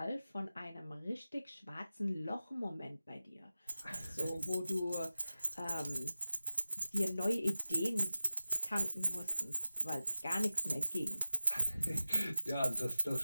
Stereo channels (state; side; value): inverted; both; correlation -0.95